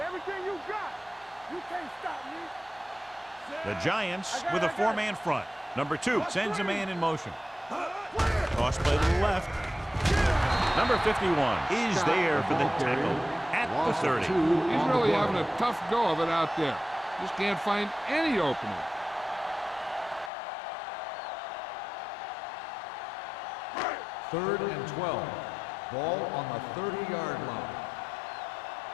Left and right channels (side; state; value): right; drops out; at 20.3 s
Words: you got. You can't stop me. The Giants with a four-man front. Number 2 sends a man in motion. Cross play to the left. Number 51 is there for the tackle at the 30. He's really having a tough go of it out there. Just can't find any opening. Third and 12. Ball on the 30-yard line.